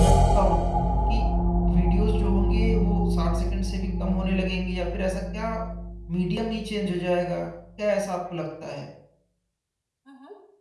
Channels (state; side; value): identical; both; correlation 1.00